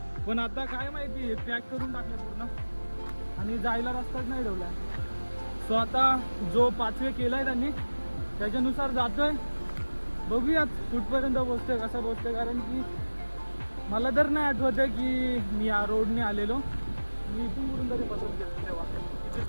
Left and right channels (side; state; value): both; inverted; correlation -1.00